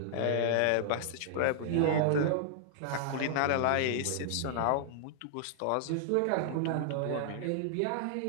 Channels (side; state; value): both; different; correlation -0.01